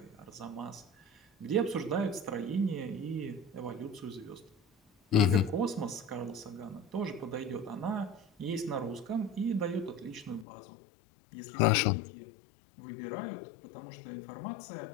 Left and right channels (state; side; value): drops out; right; at 10.5 s